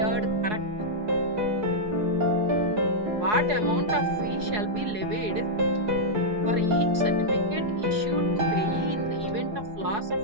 correct. What amount of fee shall be levied for each certificate issued to payee in the event of loss of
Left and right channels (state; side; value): late; left; 4.8 ms